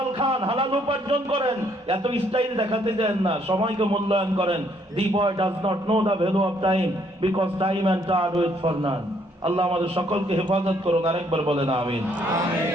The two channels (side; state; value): both; normal; correlation 0.68